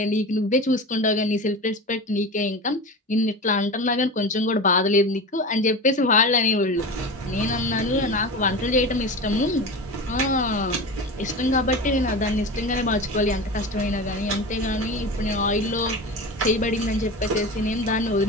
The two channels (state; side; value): normal; both; correlation 0.28